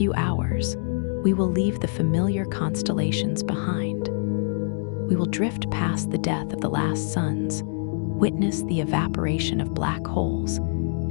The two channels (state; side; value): silent; right; digital silence